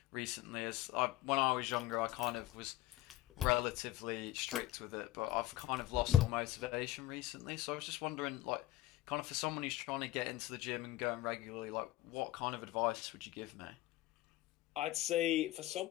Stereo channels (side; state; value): right; quieter; 15.5 dB